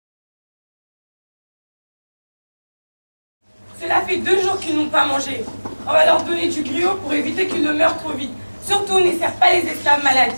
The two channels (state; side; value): inverted; both; correlation -1.00